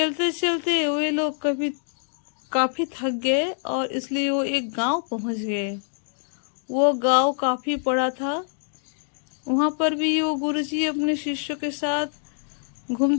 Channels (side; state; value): right; silent; digital silence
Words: चलते वे लोग काफी थक गए और इसलिए वो एक गांव पहुंच गए। वो गांव काफी बड़ा था। वहां पर भी वो गुरुजी अपने शिष्यों के साथ